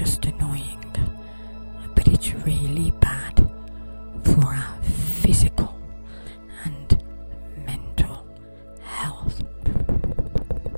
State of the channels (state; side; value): inverted; both; correlation -1.00